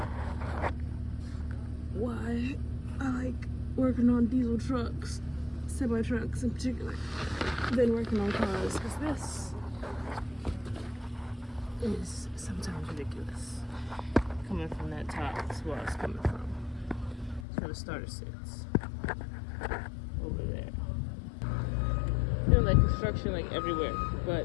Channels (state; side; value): drops out; right; at 17.4 s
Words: why I like working on diesel trucks, semi trucks in particular, than working on cars, because this is sometimes ridiculous. Coming from that top, that's where it's coming from. That's where the starter sits. Over there. Feeling like construction like everywhere,